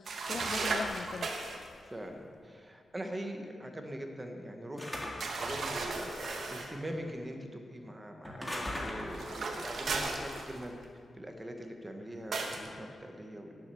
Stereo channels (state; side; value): normal; both; correlation 0.86